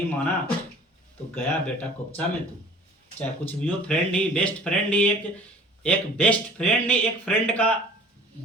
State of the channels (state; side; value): normal; both; correlation 0.47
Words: माना तो गया बेटा कोपचा में तू, चाहे कुछ भी हो। फ्रेंड ही, बेस्ट फ्रेंड ही, एक बेस्ट फ्रेंड नहीं, एक फ्रेंड का